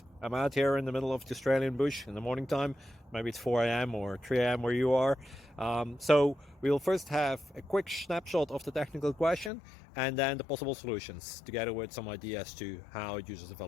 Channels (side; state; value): right; drops out; at 9.5 s